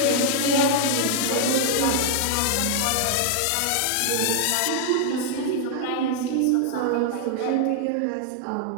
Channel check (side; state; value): both; different; correlation 0.00